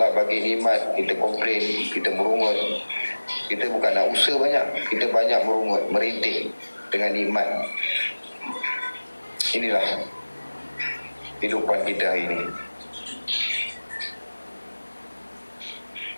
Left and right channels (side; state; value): both; inverted; correlation -1.00